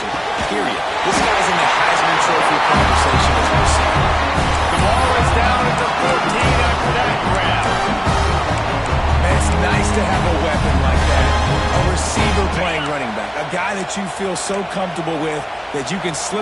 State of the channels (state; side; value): identical; both; correlation 1.00